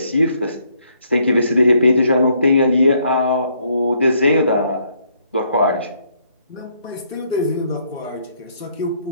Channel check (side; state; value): both; inverted; correlation -0.70